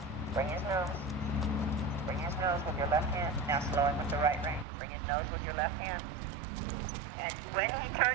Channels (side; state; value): left; drops out; at 4.7 s